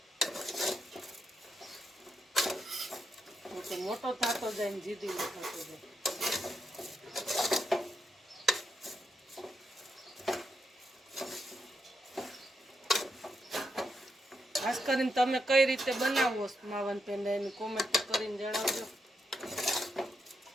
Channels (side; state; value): both; normal; correlation 0.82